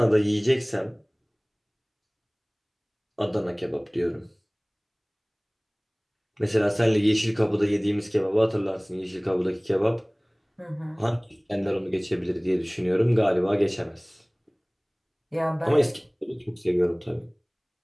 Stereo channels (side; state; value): both; identical; correlation 1.00